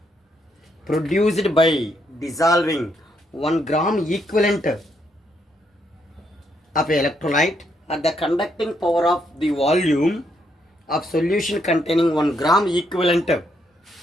produced by dissolving 1 gram equivalent of an electrolyte at the conducting power of the volume of solution containing 1 gram equivalent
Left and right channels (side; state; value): both; normal; correlation 0.76